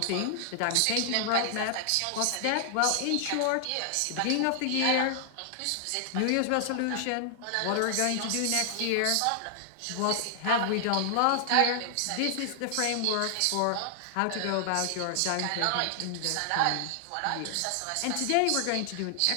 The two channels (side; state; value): both; different; correlation 0.00